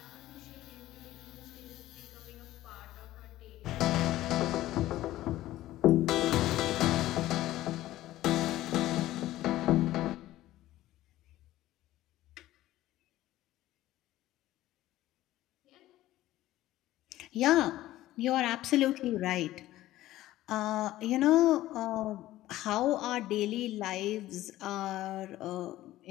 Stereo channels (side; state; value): right; quieter; 15.3 dB